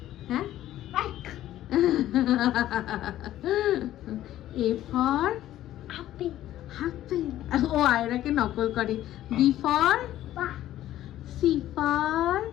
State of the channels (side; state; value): right; quieter; 13.3 dB